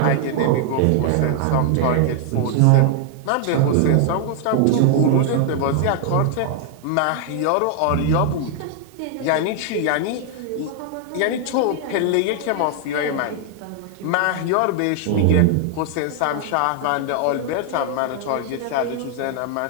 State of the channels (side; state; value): both; different; correlation 0.00